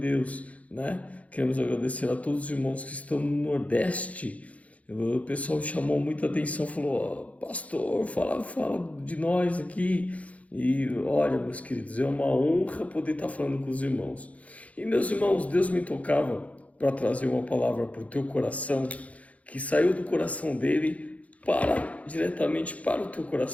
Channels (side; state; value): right; late; 0.067 ms